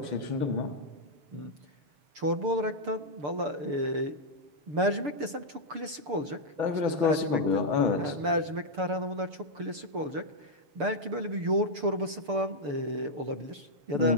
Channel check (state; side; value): late; left; 6.8 ms